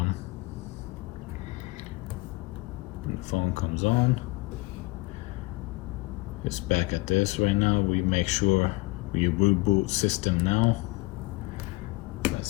And the phone comes on. It's back at this right now. We make sure we reboot system now.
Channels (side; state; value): right; quieter; 22.6 dB